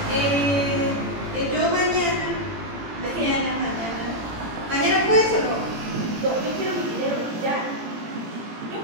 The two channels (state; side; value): late; left; 18 ms